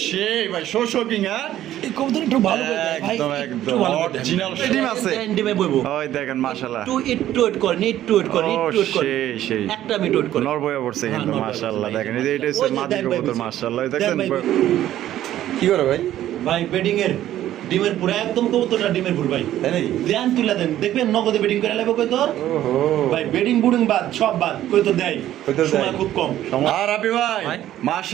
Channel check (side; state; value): left; quieter; 12.8 dB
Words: সেই ভাই শোকিং। হ্যাঁ এই কবুতর একটু ভালো করে দেয় ভাই, একদম একদম অরিজিনাল ডিম আছে। ডিমে বইবো ওই দেখেন মাশাআল্লাহ, একটু ওয়েট করেন, একটু ওয়েট করেন, একটু ওয়েট করেন, সেই সেই একটা মিনিট ওয়েট করেন। নর বয়ে পড়ছে কিন্তু হ্যাঁ, নর মাশাআল্লাহ। বয়ে দেখেন পড়ছে। এটা হচ্ছে ওই যে মাদি দেন ভাই কবুতর বুঝি। মাশাআল্লাহ। দেন দেখছেন ভাই বুঝি। কি করে ভাই? ভাই বেডিং এর ডিমের পুরো একদম কবুতরটা ডিমের পুরো ভাই, তাই নাকি? দেন তুলে দেন, দেখবেন নগদে বেডিং করে লাগবে কই তোর। ওহো ভাই বেডিং বুডিং বাদ সব বাদ, কই তো দেয় সময় খুব কম। আর আপনি ভাই ভাই।